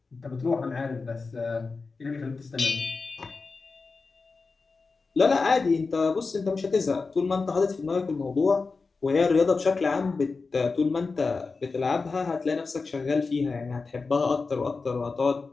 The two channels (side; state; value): right; quieter; 4.3 dB